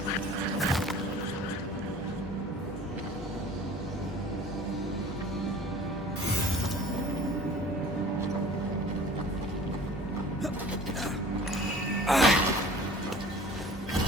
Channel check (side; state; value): both; normal; correlation 0.46